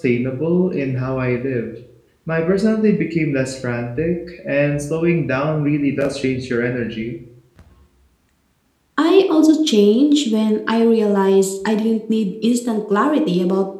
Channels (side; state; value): both; identical; correlation 1.00